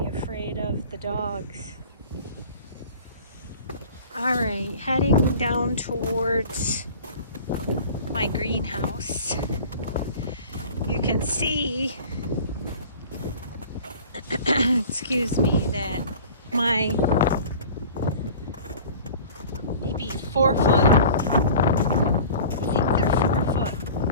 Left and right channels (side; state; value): both; inverted; correlation -0.42